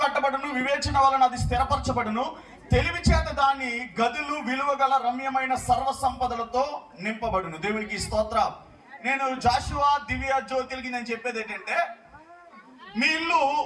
కట్టబడును, వివేచన వలన అది స్థిరపరచబడును, తెలివి చేత దాని గదులు విలువగల రమ్యమైన సర్వ సంపదలతో నింపబడును. దేవునికి స్తోత్రం. నేను జాషువా దివ్య జ్యోతిలకి నేను చెప్పేది ఏంటంటే, మీ ఇల్లు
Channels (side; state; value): both; identical; correlation 1.00